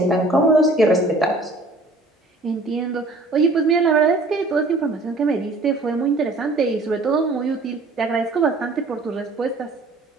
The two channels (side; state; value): left; quieter; 3.0 dB